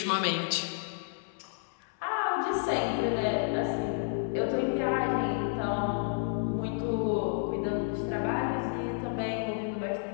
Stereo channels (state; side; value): silent; right; 57 dB below the other